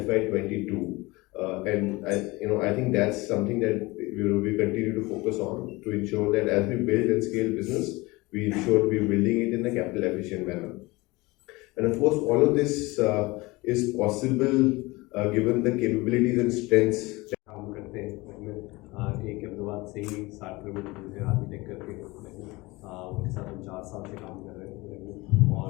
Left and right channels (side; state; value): right; quieter; 22.5 dB